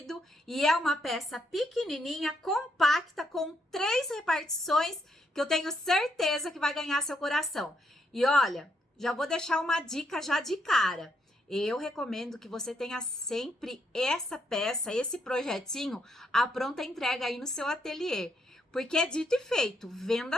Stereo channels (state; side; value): normal; both; correlation 0.76